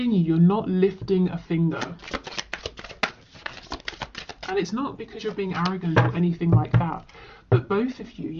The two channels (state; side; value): identical; both; correlation 1.00